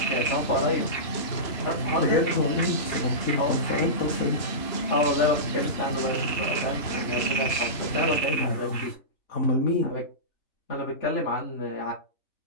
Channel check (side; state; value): right; late; 3.0 ms